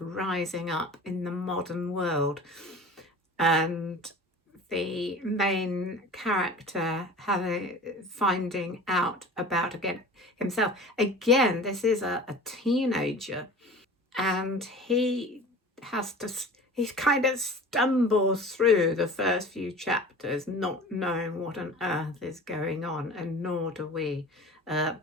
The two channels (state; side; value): normal; both; correlation 0.39